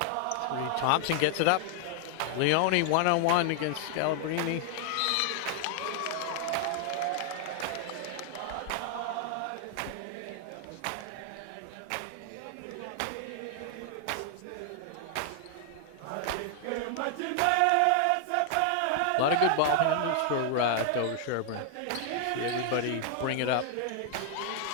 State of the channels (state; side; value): different; both; correlation 0.00